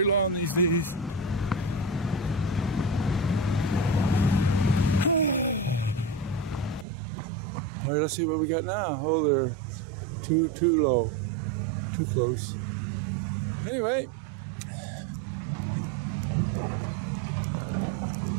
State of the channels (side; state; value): left; drops out; at 6.9 s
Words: long these days. Alright, let's see what we got now. Oh, they're too low. Too close.